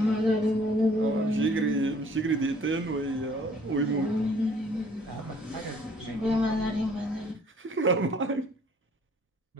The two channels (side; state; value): both; normal; correlation 0.57